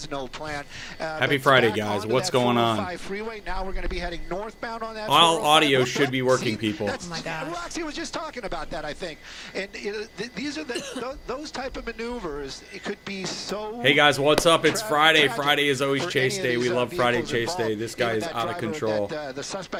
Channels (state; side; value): identical; both; correlation 1.00